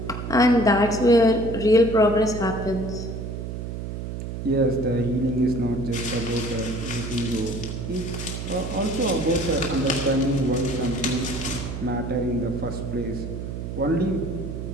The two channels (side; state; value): right; noise; hum, 6 dB below the sound